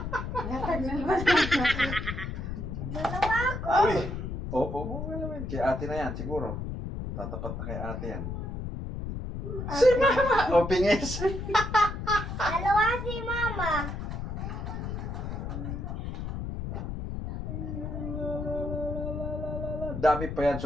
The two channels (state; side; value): noise; left; rumble, 5 dB below the sound